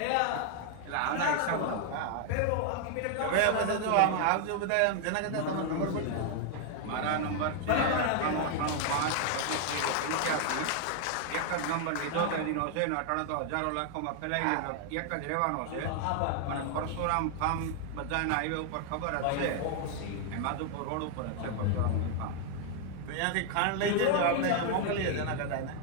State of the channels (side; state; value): both; different; correlation 0.00